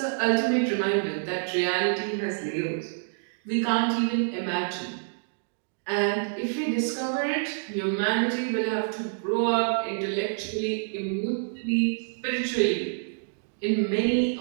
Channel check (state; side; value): silent; left; digital silence